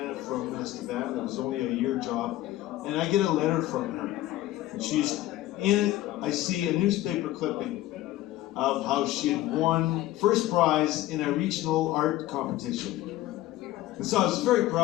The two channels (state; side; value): quieter; right; 15.4 dB